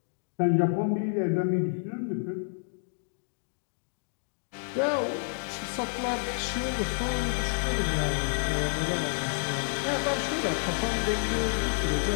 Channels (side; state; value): right; silent; digital silence